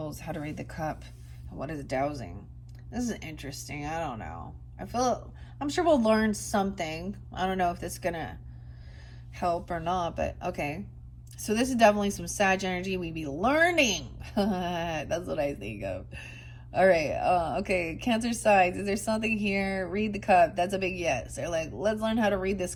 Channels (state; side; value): identical; both; correlation 1.00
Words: how to read the cup, and what is dowsing. This is interesting. I don't know. I'm sure we'll learn something. I don't know if this is going to help or not, but okay. So this is definitely some Sag energy. We be learning. That's what I think of. All right. Okay. Cancer signs. Is there something here? Read the cup. That's a big yes. They're like, let's learn how to read this